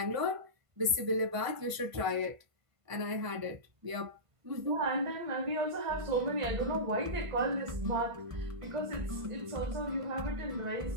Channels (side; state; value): left; late; 1.5 ms